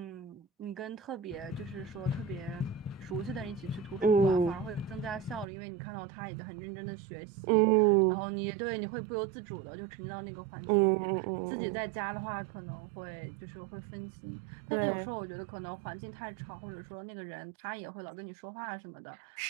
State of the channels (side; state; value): left; drops out; at 5.5 s